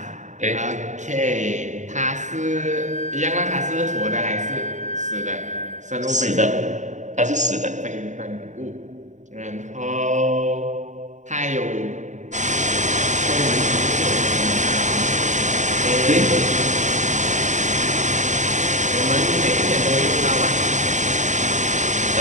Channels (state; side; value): late; left; 0.35 ms